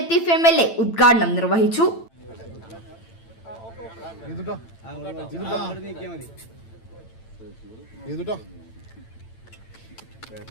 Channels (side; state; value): right; late; 8.9 ms